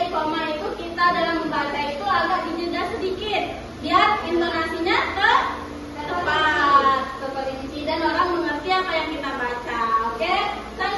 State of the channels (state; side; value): identical; both; correlation 1.00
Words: koma itu kita dalam membaca itu agak dijeda sedikit biar intonasinya tepat, terperinci dan orang mengerti apa yang kita baca. Oke?